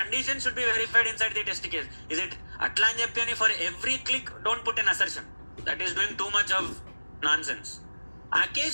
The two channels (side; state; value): both; inverted; correlation -1.00